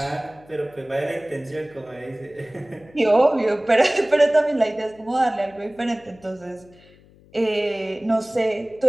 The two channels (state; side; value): noise; left; hum, 27 dB below the sound